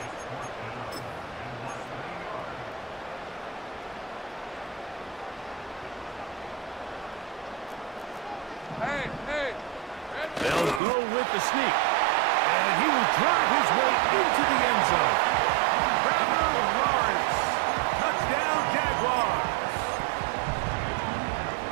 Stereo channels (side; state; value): left; drops out; at 10.8 s